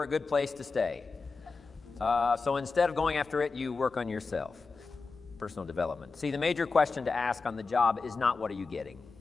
a good place to stay. So instead of going after it, you work on yourself. Personal development. See, the major question to ask on the job is not what are you getting.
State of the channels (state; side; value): quieter; right; 4.3 dB